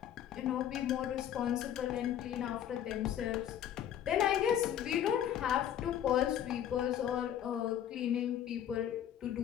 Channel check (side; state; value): right; quieter; 10.4 dB